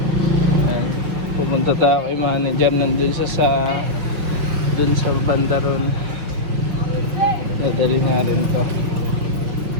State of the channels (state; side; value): late; left; 6.0 ms